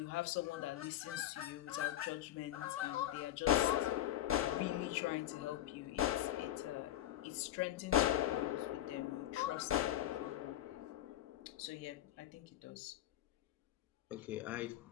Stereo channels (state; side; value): quieter; right; 13.1 dB